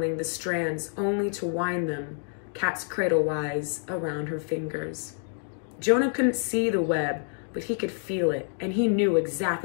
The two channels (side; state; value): right; silent; 55 dB below the other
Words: the strands only to wind them, cat's cradle-wise, around her fingers. Jonah couldn't see the web, but he could feel it, and he knew